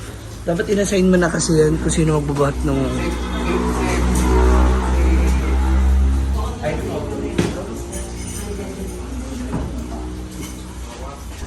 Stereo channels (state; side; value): identical; both; correlation 1.00